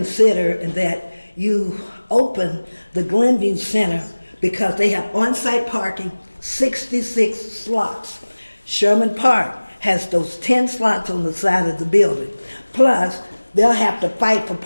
and that you open the Glenview Center, because they have on-site parking, 66 slots. Sherman Park has those 10 slots on the side of the building. Plus, they'll have to fight for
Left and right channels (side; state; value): both; inverted; correlation -1.00